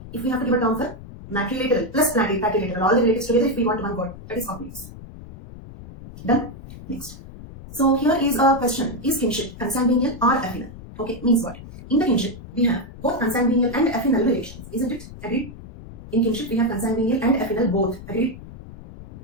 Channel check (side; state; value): left; noise; rumble, 15 dB below the sound